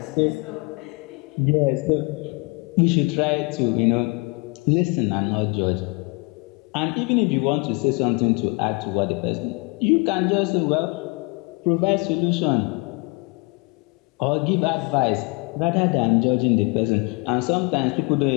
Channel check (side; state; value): right; quieter; 29.5 dB